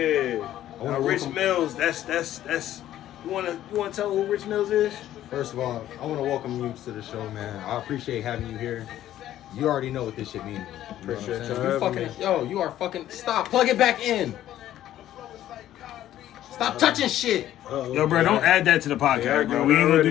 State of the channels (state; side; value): quieter; right; 12.6 dB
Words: Now, Rich welcome- Millz, that's. You wanna tell who Rich Millz is? First of all, I want to welcome you to the show, man. I appreciate having you here. You already know what this shit means. You know what I'm Appreciate saying? y'all You having fucking, you are fucking, stop, plug it back in. Stop touching shit. Uh-oh. Yo, bro, don't add that to the podcast, Yeah, bro. I We ain't gonna already-